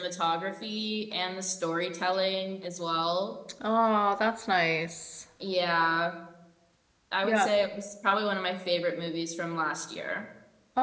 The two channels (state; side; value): identical; both; correlation 1.00